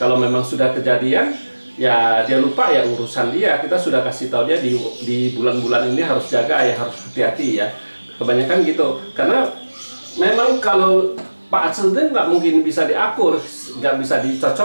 memang sudah kejadian ya dia lupa ya urusan dia. Kita sudah kasih tahu dia di bulan-bulan ini harus jaga ya, harus hati-hati ya. Kebanyakan gitu, karena memang kalau Pak Ce nggak mungkin bisa diakur, nggak bisa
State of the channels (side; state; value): both; inverted; correlation -1.00